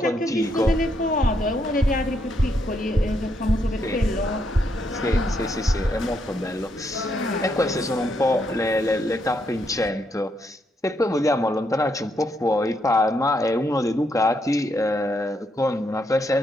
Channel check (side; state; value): both; normal; correlation 0.77